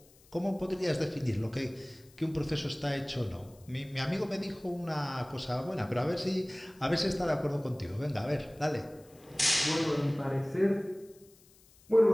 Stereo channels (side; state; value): left; noise; hiss, 28 dB below the sound